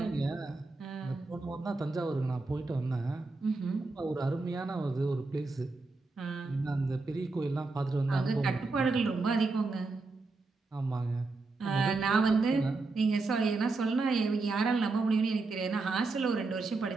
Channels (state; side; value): quieter; left; 3.7 dB